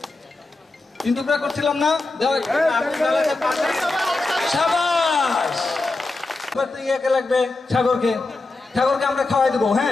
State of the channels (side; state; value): right; quieter; 3.3 dB